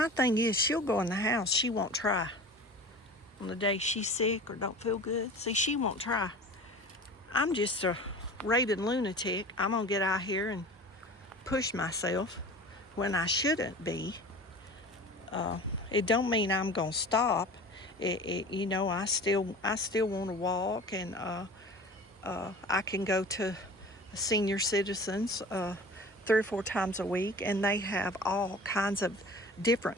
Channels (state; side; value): normal; both; correlation 0.39